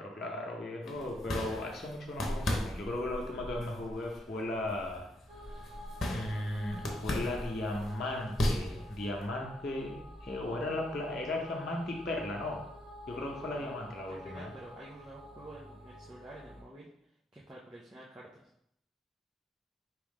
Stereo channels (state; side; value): normal; both; correlation 0.75